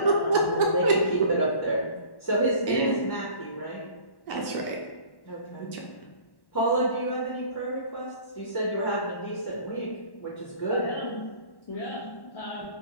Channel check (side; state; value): right; late; 1.1 ms